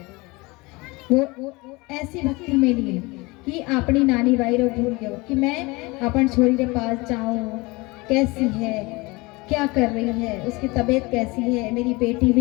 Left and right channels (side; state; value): right; quieter; 24.3 dB